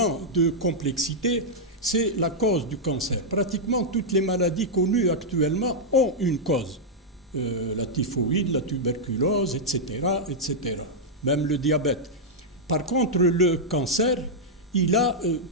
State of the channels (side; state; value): both; normal; correlation -0.05